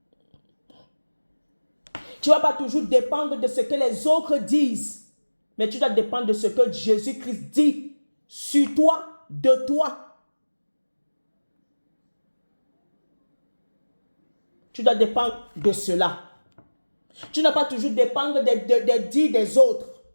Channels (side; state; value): both; inverted; correlation -1.00